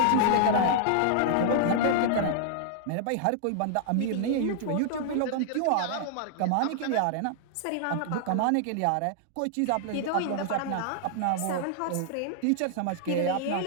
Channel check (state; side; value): different; both; correlation -0.01